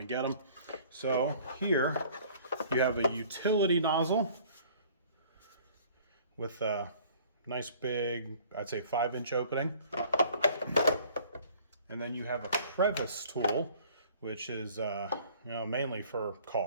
get them. So here you have a utility nozzle with a nice big, I'd say 5-inch opening. And then you have a Crevice tool, which is mainly for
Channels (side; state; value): both; inverted; correlation -0.53